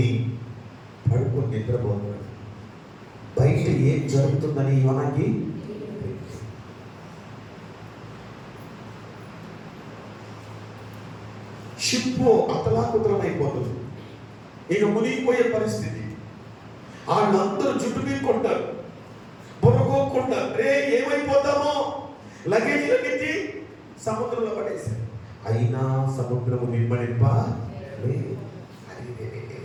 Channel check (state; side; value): identical; both; correlation 1.00